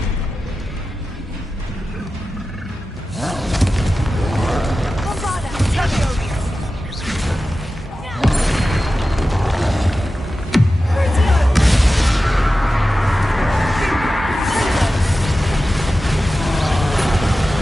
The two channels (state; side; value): normal; both; correlation 0.94